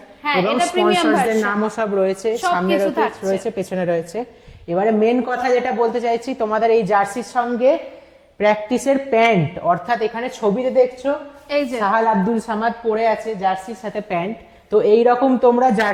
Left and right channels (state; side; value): identical; both; correlation 1.00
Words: এবং স্পন্সরদের নামও সব রয়েছে, সামনে রয়েছে, পেছনে রয়েছে। এবারে মেন কথা যেটা বলতে চাইছি, তোমাদের এই জার্সির সঙ্গে প্র্যাকটিসের প্যান্ট, অর্থাৎ এখানে ছবিতে দেখছো এই যে সাহাল আব্দুল সামাদ পরে আছে জার্সির সাথে প্যান্ট, তো এই রকম তোমরা